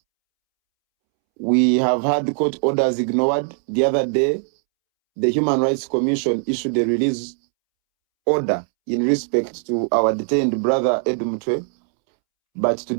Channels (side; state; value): left; silent; 66 dB below the other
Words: We have had court orders ignored. The other day, the Human Rights Commission issued a release order in respect to our detained brother Mutwe, but to